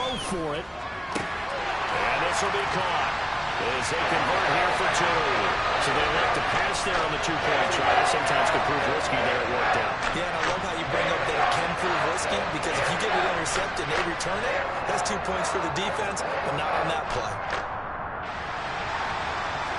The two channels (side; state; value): both; identical; correlation 1.00